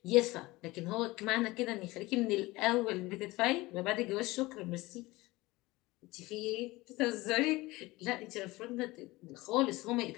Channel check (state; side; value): quieter; right; 20.6 dB